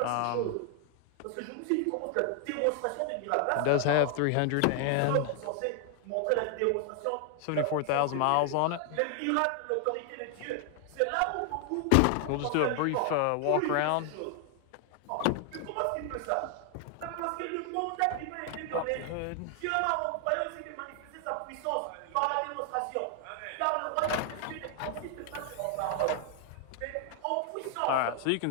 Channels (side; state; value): both; different; correlation 0.00